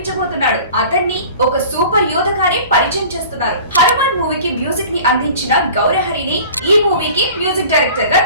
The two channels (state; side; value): inverted; both; correlation -0.44